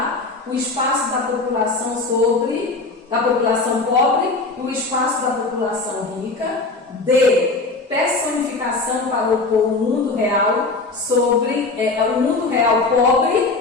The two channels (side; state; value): right; quieter; 3.6 dB